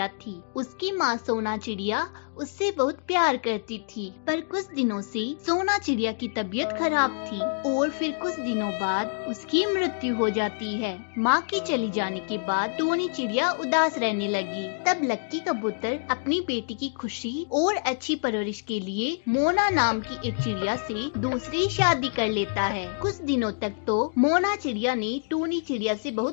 थी। उसकी माँ सोना चिड़िया उससे बहुत प्यार करती थी, पर कुछ दिनों से सोना चिड़िया की तबीयत खराब थी और फिर कुछ दिनों बाद उसकी मृत्यु हो जाती है। माँ के चली जाने के बाद टूनी चिड़िया उदास रहने लगी। तब लक्की कबूतर अपनी बेटी की खुशी और अच्छी परवरिश के लिए मोना नाम की एक चिड़िया से दूसरी शादी कर लेता है। कुछ दिनों तक तो मोना चिड़िया ने टूनी चिड़िया से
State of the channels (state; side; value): silent; right; digital silence